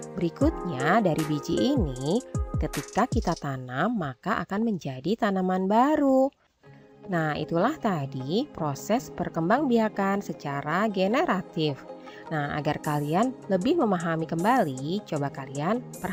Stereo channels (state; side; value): identical; both; correlation 1.00